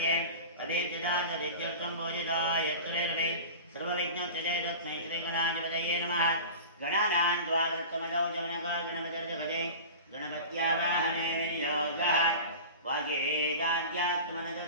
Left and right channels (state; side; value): inverted; both; correlation -0.34